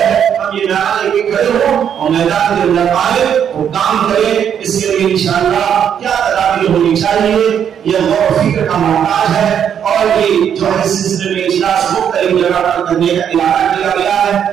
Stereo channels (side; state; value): left; quieter; 8.6 dB